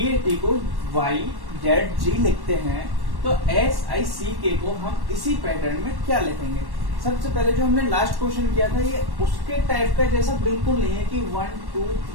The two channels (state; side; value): late; left; 1.1 ms